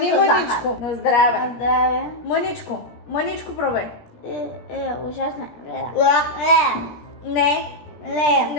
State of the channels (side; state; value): right; late; 17 ms